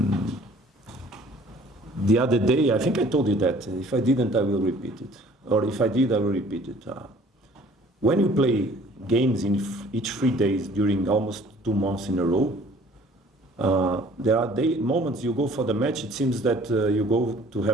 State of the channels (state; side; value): normal; both; correlation 0.54